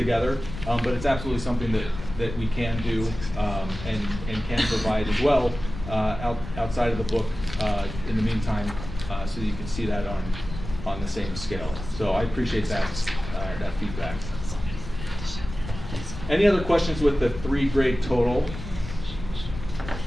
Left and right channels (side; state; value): left; noise; rumble, 10 dB below the sound